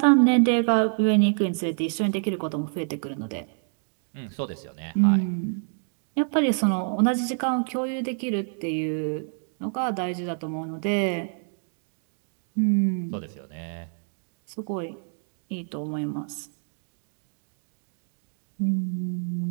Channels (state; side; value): silent; left; 60 dB below the other